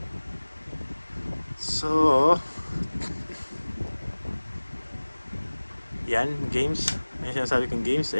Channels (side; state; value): both; inverted; correlation -1.00